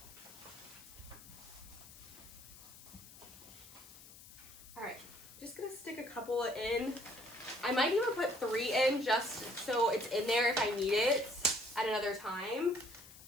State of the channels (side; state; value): left; noise; hiss, 18 dB below the sound